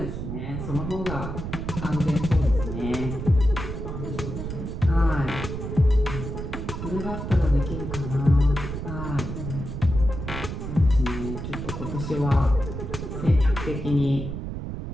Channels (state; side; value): noise; right; rumble, 6 dB below the sound